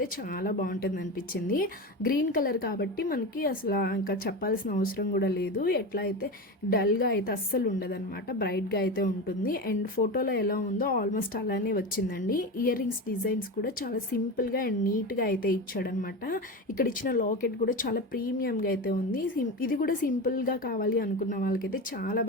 చాలా బాగుంటుంది అనిపించింది. గ్రీన్ కలర్ కాబట్టి మనకి అసలు ఇంకా చెప్పాల్సిన అవసరం కూడా లేదు. ఎట్లా అయితే డల్గా అయితే అస్సలు ఉండదన్నమాట, బ్రైట్గా అయితే ఉంటుంది. అండ్ ఫోటోలో ఎలా ఉందో ఆల్మోస్ట్ అలానే వచ్చిందండి. ఇయర్ రింగ్స్ డిజైన్స్ కూడా చాలా సింపుల్గా అండ్ నీట్గా అయితే ఇచ్చాడనమాట. ఇక్కడ ఇచ్చిన లాకెట్ కూడా చాలా ప్రీమియంగా అయితే ఉంది. ఇది కూడా సింపుల్గా కావాలి అనుకున్న వాళ్ళకైతే చాలా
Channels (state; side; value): normal; both; correlation 0.23